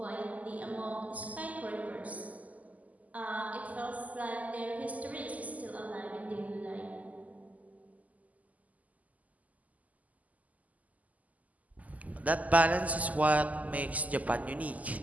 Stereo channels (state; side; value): late; left; 0.076 ms